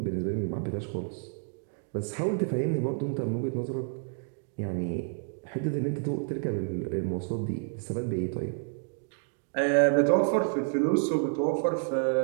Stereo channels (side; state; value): left; silent; digital silence